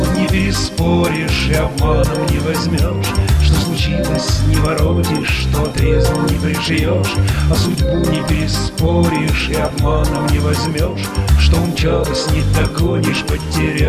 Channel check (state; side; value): identical; both; correlation 1.00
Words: не переспоришь и обманом не возьмешь. Что случилось, не воротишь, что отрезал, не пришьешь. А судьбу не переспоришь и обманом не возьмешь. Что умчалась, не догонишь,